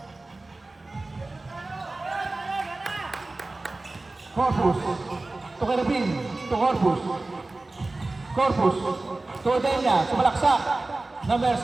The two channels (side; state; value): left; quieter; 3.1 dB